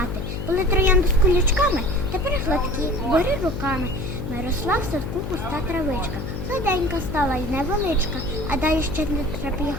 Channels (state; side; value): noise; left; hum, 6 dB below the sound